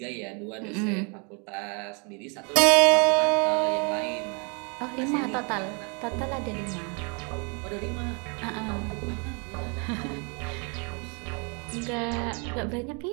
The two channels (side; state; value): left; quieter; 34.4 dB